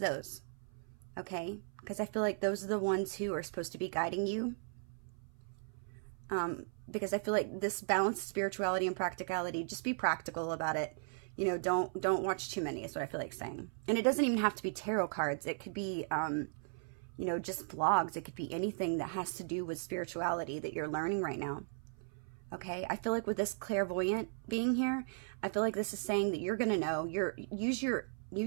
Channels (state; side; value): silent; left; 53 dB below the other